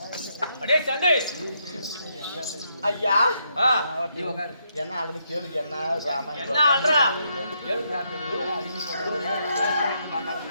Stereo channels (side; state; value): both; inverted; correlation -0.77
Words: அடே சண்டே ஐயா என்ன ஆல்ரெடி கேளுங்க என்ன என்ன ஆள்றா